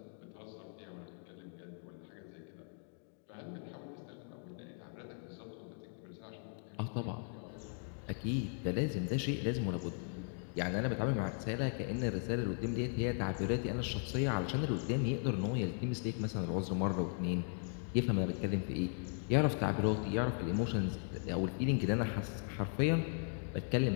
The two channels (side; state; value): right; silent; 53 dB below the other